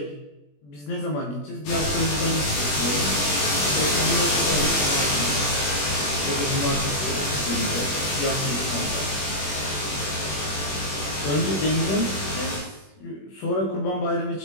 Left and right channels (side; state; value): right; late; 21 ms